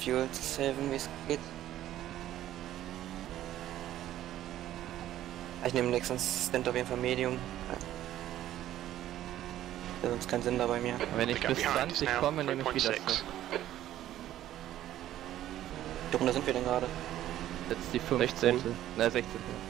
zu saven, wie es geht. Ich nehme den nächsten Stint auf jeden Fall Medium. Ja, sonst keinen Sinn da bei mir. Wenn ich bis 20 komme, nehme ich wieder so. Wie Runde sind wir denn gerade? Jetzt die 15. Na, 16.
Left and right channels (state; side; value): quieter; left; 12.9 dB